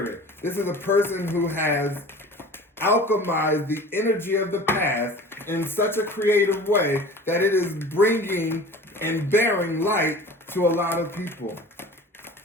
it. This is a person who has alchemized the energy of the past in such a creative way that it is bringing and bearing light to a lot of people.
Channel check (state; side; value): normal; both; correlation 0.41